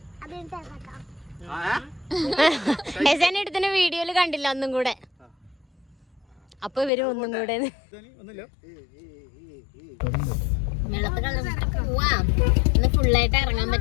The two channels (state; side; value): drops out; right; at 6.9 s